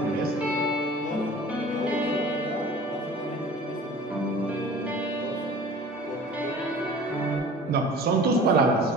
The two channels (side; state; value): both; normal; correlation 0.43